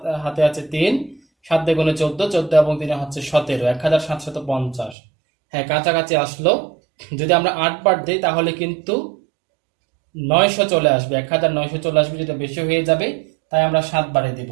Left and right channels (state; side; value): drops out; left; at 5.0 s